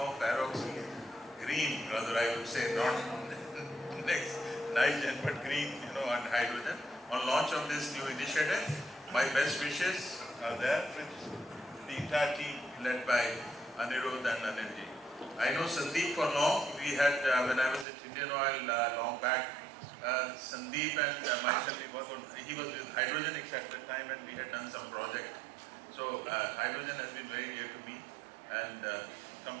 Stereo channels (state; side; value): drops out; left; at 17.9 s